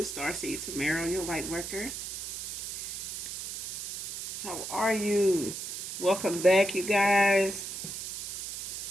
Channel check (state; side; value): noise; right; hiss, 6 dB below the sound